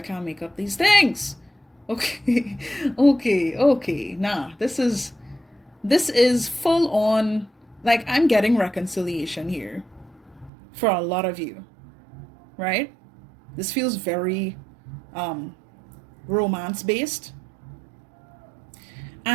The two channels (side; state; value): left; drops out; at 10.5 s